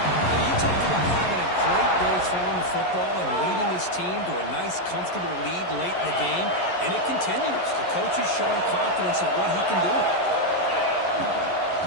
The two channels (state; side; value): late; right; 11 ms